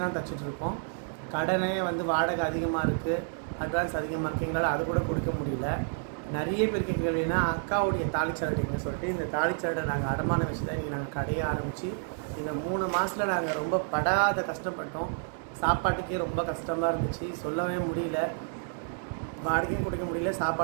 தான் தச்சுட்டு இருக்கோம். கடனே வந்து வாடகை அதிகமாக இருக்குது, அட்வான்ஸ் அதிகமாக இருக்குது, எங்களால் அது கூட கொடுக்க முடியல. நிறைய பேர் கேட்கலைன்னா அக்காவுடைய தாலிச்சாரடின்னு சொல்லிட்டு இந்த தாலிச்சாரடை நாங்கள் அடமானம் வச்சு தான் இன்றைக்கி நாங்கள் கடையை ஆரம்பித்து இந்த 3 மாதத்தில் நாங்கள் ரொம்ப படாத கஷ்டப்பட்டோம். சாப்பாட்டுக்கே ரொம்ப கஷ்டமாக இருந்துச்சு, சொல்லவே முடியல. வாடகையும் கொடுக்க முடியல,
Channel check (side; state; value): left; silent; digital silence